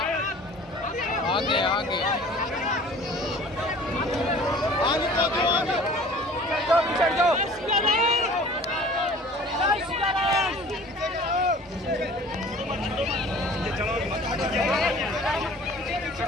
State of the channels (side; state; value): both; normal; correlation 0.47